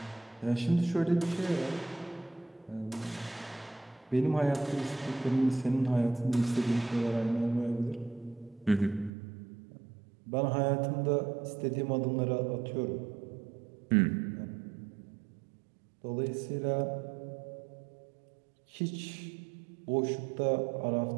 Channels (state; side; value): drops out; left; at 9.1 s